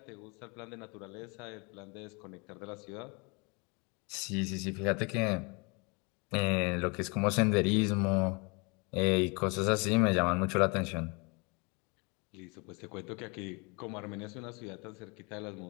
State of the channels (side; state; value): right; quieter; 30.5 dB